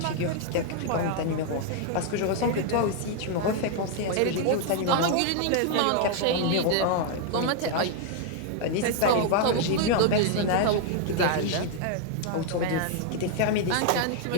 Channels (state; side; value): different; both; correlation 0.00